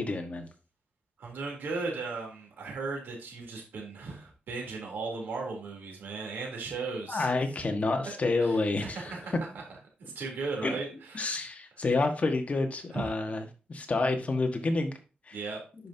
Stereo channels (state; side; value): normal; both; correlation 0.82